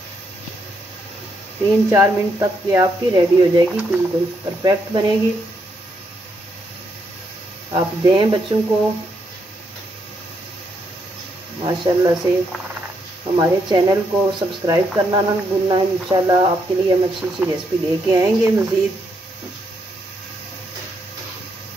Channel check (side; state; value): both; normal; correlation 0.77